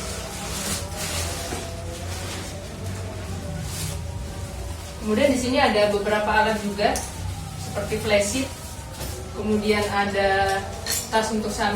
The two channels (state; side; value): identical; both; correlation 1.00